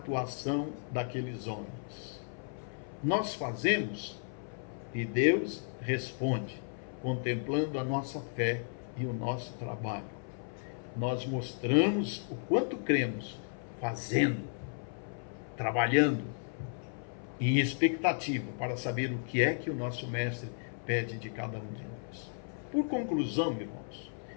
daqueles homens. Nós fazemos e Deus responde, contemplando a nossa fé e o nosso trabalho. Nós mostramos o quanto cremos, fazendo, trabalhando, em expectativa para saber o que é que o nosso Mestre pede de cada um de nós. Por conclusão, irmãos,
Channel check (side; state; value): right; silent; 55 dB below the other